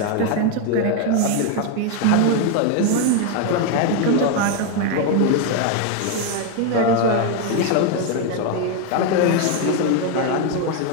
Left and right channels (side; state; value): both; different; correlation 0.02